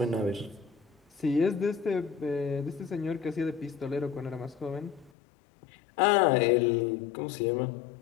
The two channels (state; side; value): drops out; right; at 5.1 s